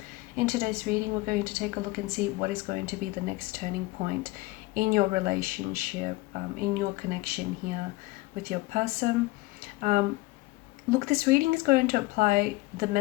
In today's reading, we're going to take a look and see what is going to be the next turning point in your relationship, in your connection here with your person. Look, this reading is going to apply, the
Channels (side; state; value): right; quieter; 21.3 dB